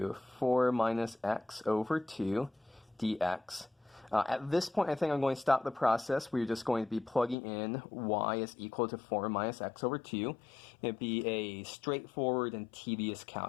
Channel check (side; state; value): right; drops out; at 7.4 s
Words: 4 minus x over 2 dx. At this point, I think I'm going to stop the process. We're just going to be plugging in y is equal to 4 minus x over 2. It'd be a straightforward and tedious